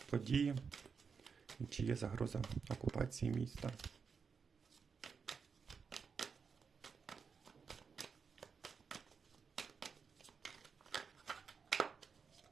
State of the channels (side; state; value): left; quieter; 5.7 dB